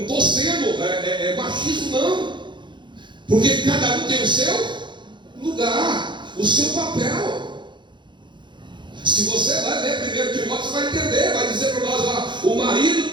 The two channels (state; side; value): late; left; 0.23 ms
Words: estou sendo machismo, não. Porque cada um tem o seu lugar, o seu papel. Se você vai ler 1 Timóteo, você vai entender, vai dizer para nós lá, o marido